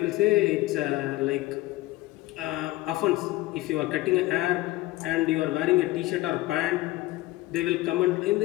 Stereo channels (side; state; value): right; quieter; 18.3 dB